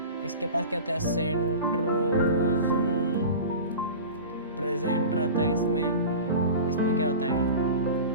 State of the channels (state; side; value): inverted; both; correlation -0.35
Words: इसके पास क्या होता है, सेंट्रोसोम प्रेजेंट रहता है। इसमें क्या होता है,